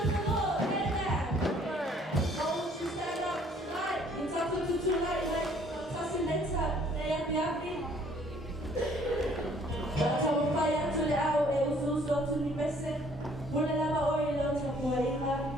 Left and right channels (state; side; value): normal; both; correlation 0.59